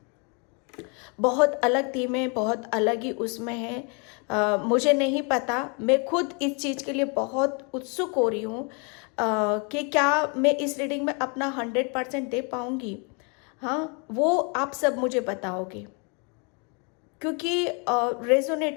बहुत अलग थीमें, बहुत अलग ही उसमें है। मुझे नहीं पता, मैं खुद इस चीज़ के लिए बहुत उत्सुक हो रही हूँ कि क्या मैं इस रीडिंग में अपना 100% दे पाऊँगी। हाँ, वो आप सब मुझे बताओगे, क्योंकि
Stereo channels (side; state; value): right; quieter; 34.9 dB